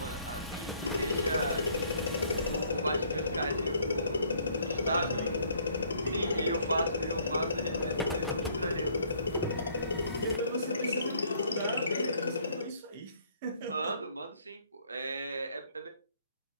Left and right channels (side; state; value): both; inverted; correlation -0.63